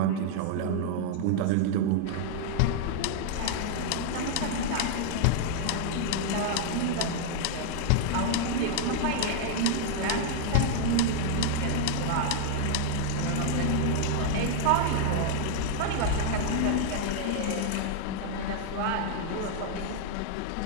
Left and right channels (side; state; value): both; different; correlation 0.00